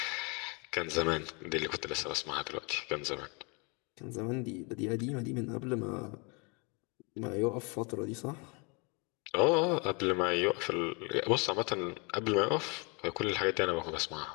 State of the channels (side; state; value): right; quieter; 32.0 dB